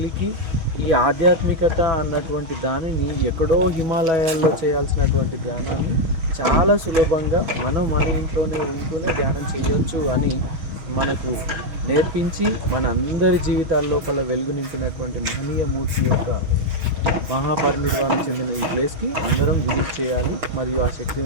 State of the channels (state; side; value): late; left; 6.4 ms